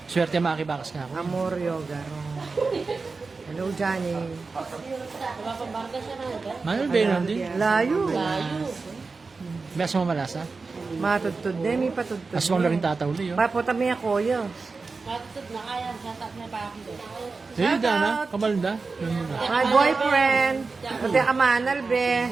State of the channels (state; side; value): quieter; left; 4.2 dB